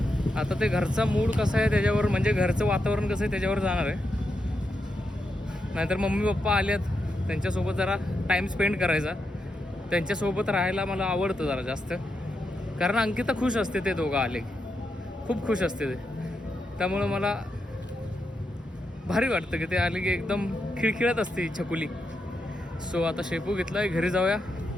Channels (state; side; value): normal; both; correlation 0.85